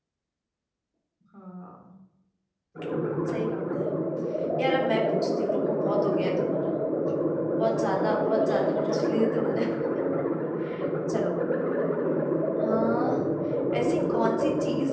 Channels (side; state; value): both; identical; correlation 1.00